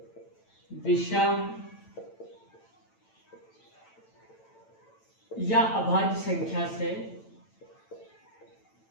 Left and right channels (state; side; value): late; right; 9.0 ms